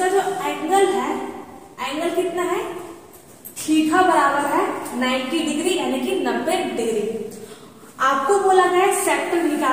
जो एंगल है, एंगल कितना है? थीटा बराबर है 90 डिग्री यानी कि 90 डिग्री। आपको बोला गया है सेक्टर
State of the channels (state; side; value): identical; both; correlation 1.00